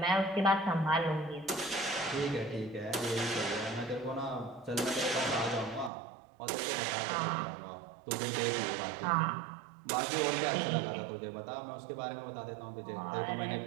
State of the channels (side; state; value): left; drops out; at 5.9 s